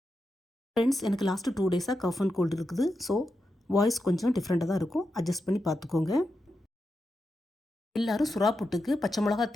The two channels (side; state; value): both; normal; correlation 0.88